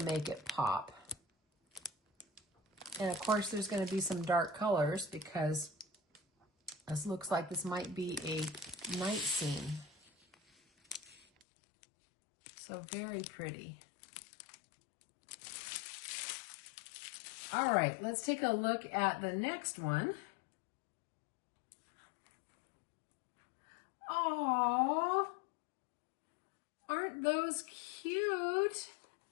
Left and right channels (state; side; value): drops out; right; at 11.5 s